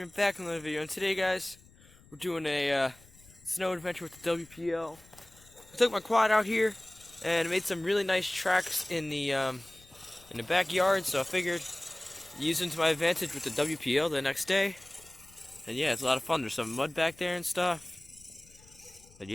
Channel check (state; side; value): noise; left; rumble, 25 dB below the sound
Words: back in another video. And today, guys, we're doing a snow adventure with the WPL. I took my quad out here and made some really nice tracks in the backyard. So I figured use them to my advantage with the WPL the next day. And yeah, it's a lot of fun. There's some mud back there and stuff. But